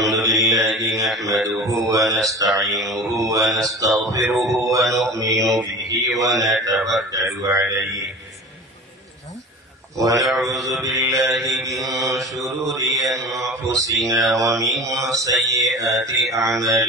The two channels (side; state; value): both; normal; correlation 0.36